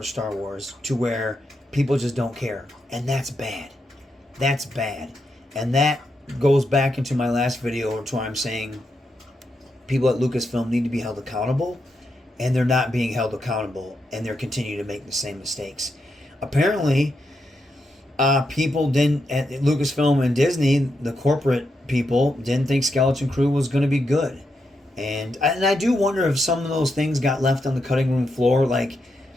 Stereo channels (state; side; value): normal; both; correlation 0.84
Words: Star Wars, to where people just don't care. And that's bad. That's bad. And that goes back into my last video, to where I'm saying people at Lucasfilm need to be held accountable, and they're not being held accountable, and they're continuing to make the same mistakes. Apparently, people didn't, at Lucasfilm and Disney, the corporate people, didn't think Skeleton Crew was going to be good. And I do wonder if some of those things got left on the cutting room floor. Like,